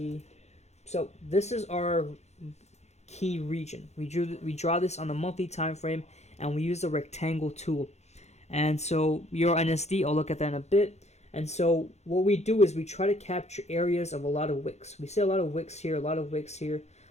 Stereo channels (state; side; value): late; right; 0.32 ms